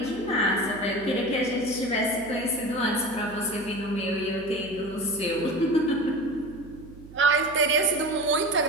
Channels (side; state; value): right; noise; hum, 19 dB below the sound